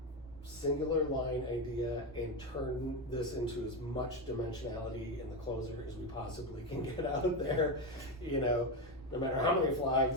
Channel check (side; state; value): both; normal; correlation 0.13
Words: singular line idea and turn this into as much dimensionality in the closer as we possibly can get out there, no matter how many